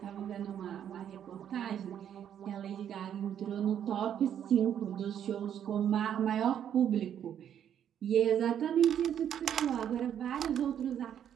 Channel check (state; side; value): quieter; left; 9.5 dB